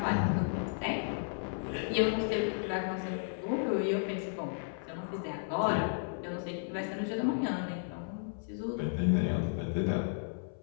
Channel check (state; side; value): silent; right; 55 dB below the other